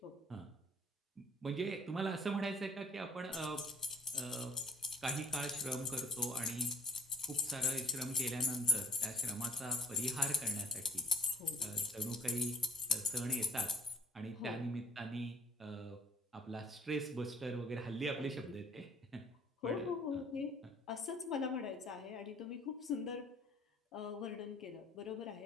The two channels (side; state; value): both; normal; correlation 0.66